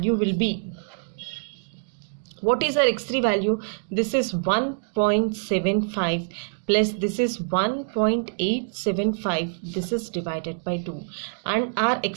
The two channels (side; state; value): left; silent; digital silence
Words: will be, what is our x3 value? This is 1.75 plus this is 1.875, this is divided by 2, and our